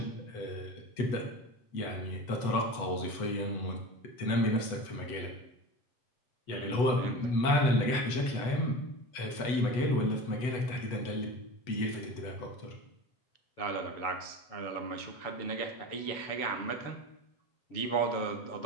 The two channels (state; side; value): late; right; 8.0 ms